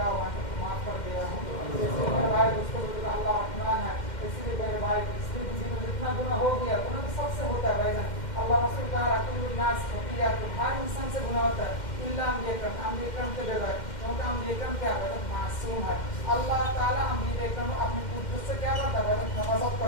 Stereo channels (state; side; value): late; right; 2.1 ms